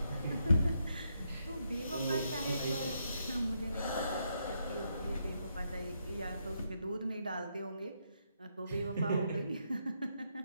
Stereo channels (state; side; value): inverted; both; correlation -0.78